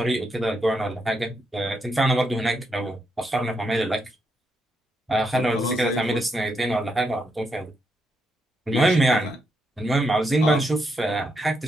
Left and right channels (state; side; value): normal; both; correlation 0.80